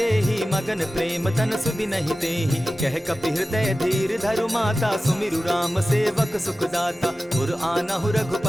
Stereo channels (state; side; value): normal; both; correlation 0.95